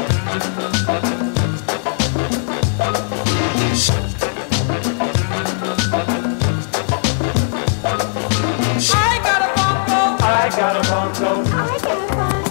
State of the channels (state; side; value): silent; right; 67 dB below the other